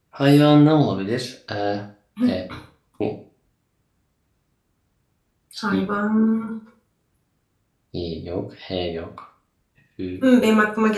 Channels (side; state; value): both; identical; correlation 1.00